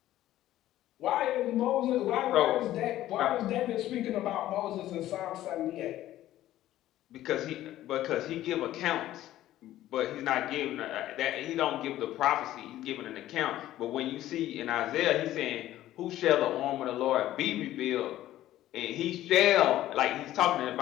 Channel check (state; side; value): quieter; right; 13.9 dB